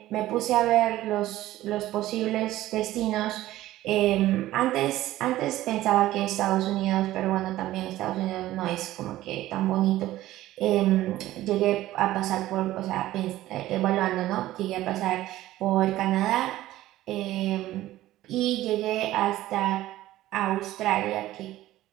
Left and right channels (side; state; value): left; quieter; 15.3 dB